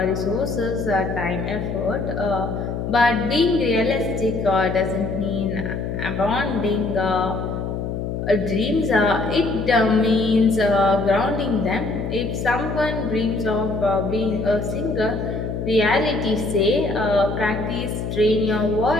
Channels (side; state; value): left; noise; hum, 4 dB below the sound